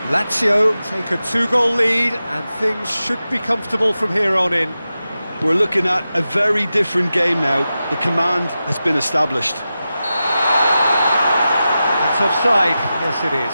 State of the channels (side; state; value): both; inverted; correlation -0.92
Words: Lazio take a 2-goal lead, and things should be comfortable from here on in. We're looking at a very different game now. The command has been established. It's offside. Yes, it is.